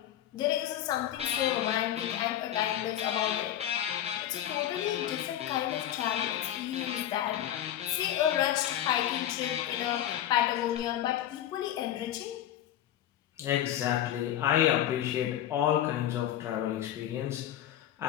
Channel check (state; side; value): quieter; right; 11.7 dB